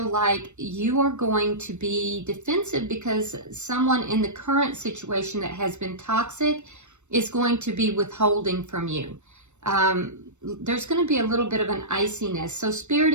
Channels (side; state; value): left; late; 0.83 ms